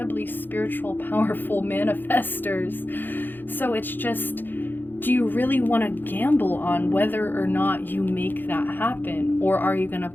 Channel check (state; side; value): late; right; 0.092 ms